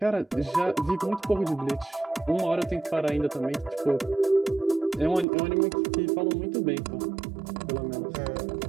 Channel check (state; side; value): drops out; left; at 5.2 s